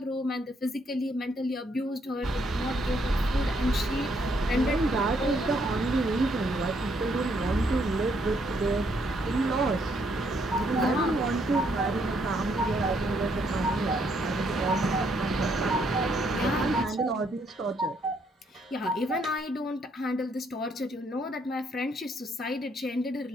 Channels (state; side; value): normal; both; correlation 0.71